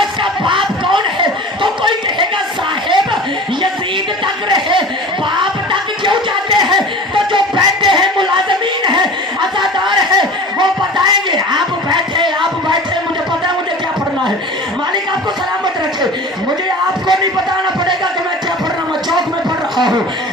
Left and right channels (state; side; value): normal; both; correlation 0.39